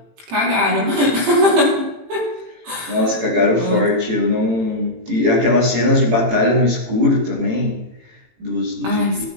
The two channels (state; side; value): late; left; 18 ms